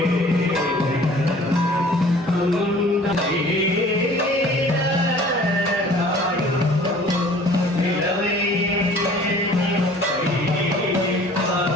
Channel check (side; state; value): both; normal; correlation 0.50